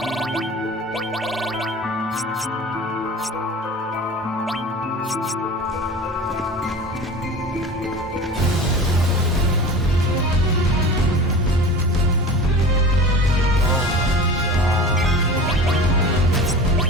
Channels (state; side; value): normal; both; correlation 0.36